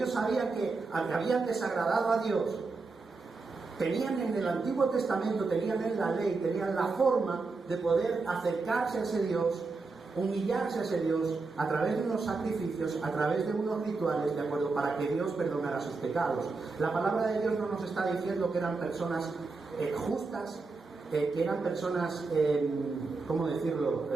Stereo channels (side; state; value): left; quieter; 4.0 dB